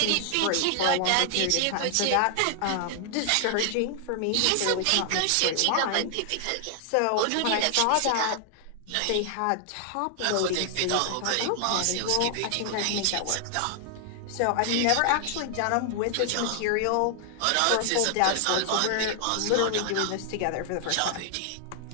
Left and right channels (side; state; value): both; different; correlation 0.00